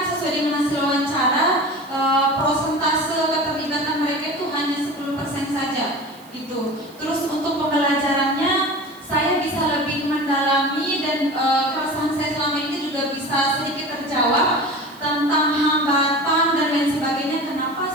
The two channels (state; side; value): noise; right; hiss, 25 dB below the sound